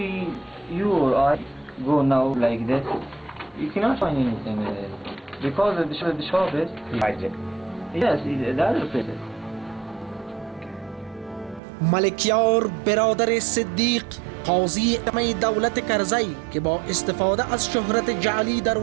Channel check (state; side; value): drops out; left; at 11.6 s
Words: you or I go now like that, you cannot find anything because the shop is hijacked. Yes, the other places. ملکیار برادر صدیق قاضی ادمه دولت کرزی که با استفاده از شهرت جعلی در